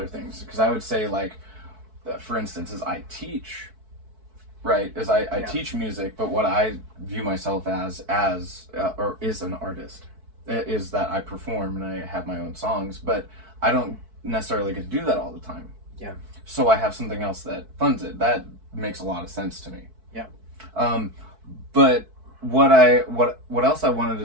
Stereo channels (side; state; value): left; late; 4.6 ms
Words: things. Because I would say, like, for instance, as I teach, right? As I teach music, but what I view myself as or is an artist, is that I perform and I have my own songs, but I don't necessarily get to do that all the time. Yeah. So I have something else that funds it. That makes a lot of sense to me. Yeah. But what else I wanted